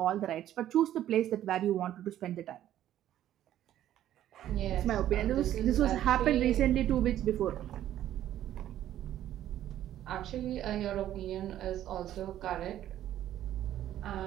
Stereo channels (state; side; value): quieter; left; 12.2 dB